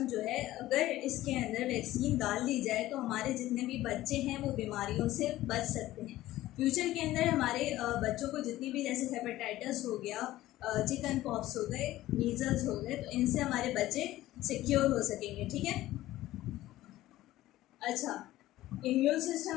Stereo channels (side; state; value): right; quieter; 15.6 dB